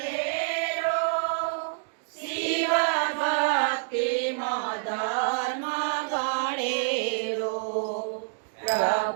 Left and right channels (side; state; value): left; silent; digital silence